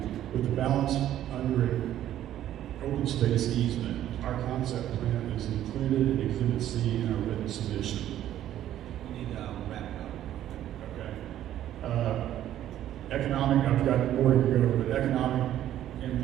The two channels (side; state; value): left; quieter; 12.1 dB